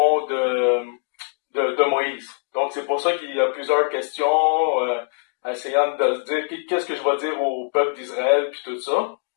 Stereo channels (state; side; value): silent; right; 64 dB below the other